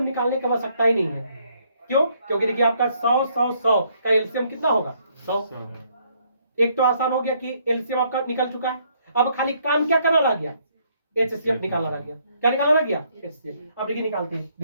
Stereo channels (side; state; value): both; inverted; correlation -0.69